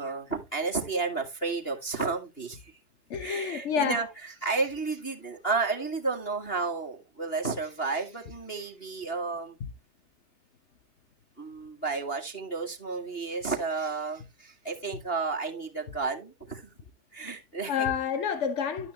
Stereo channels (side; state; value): right; late; 2.8 ms